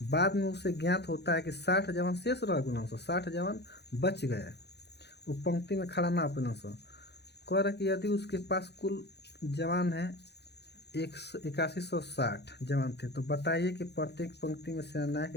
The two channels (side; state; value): right; late; 0.49 ms